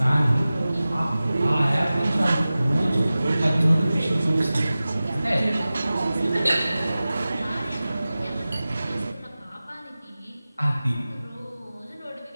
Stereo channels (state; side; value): inverted; both; correlation -0.96